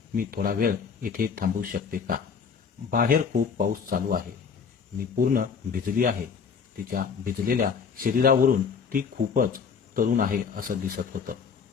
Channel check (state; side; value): quieter; right; 6.1 dB